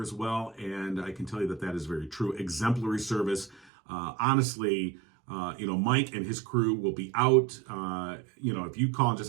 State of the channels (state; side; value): drops out; left; at 3.6 s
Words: well, and I can tell you that is very true. Exemplary service. Honestly, Mike and his crew will be out. If you call and